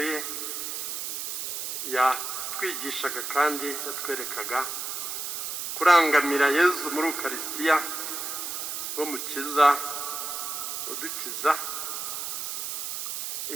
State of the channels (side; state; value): right; noise; hiss, 4 dB below the sound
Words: ye yatwigishaga kandi yatwerekaga kurangamira Yezu muri Ukaristiya, wo mukiza udukiza.